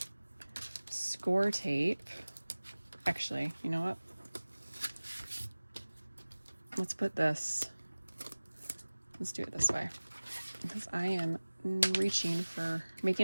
score tape. Actually, you know what? Let's do it this way, because I am reaching for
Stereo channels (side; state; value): both; inverted; correlation -1.00